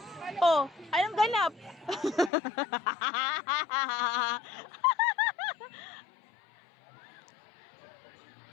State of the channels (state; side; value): drops out; right; at 2.3 s